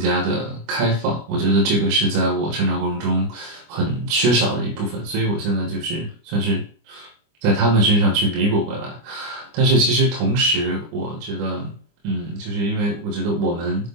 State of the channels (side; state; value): left; late; 25 ms